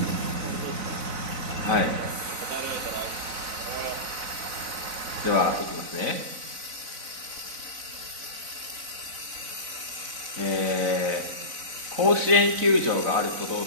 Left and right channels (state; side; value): late; left; 4.0 ms